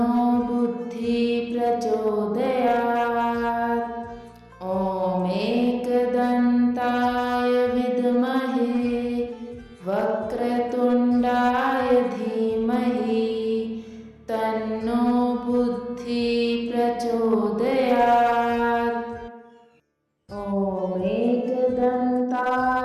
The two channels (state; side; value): identical; both; correlation 1.00